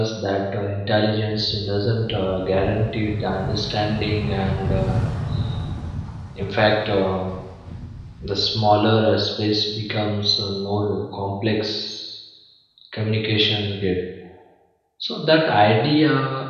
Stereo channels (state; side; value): identical; both; correlation 1.00